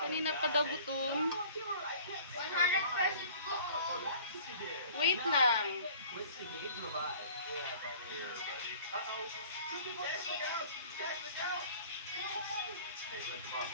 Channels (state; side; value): inverted; both; correlation -0.47